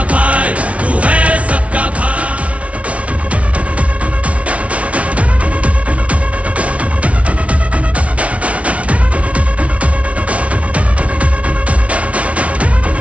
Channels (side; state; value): left; late; 0.064 ms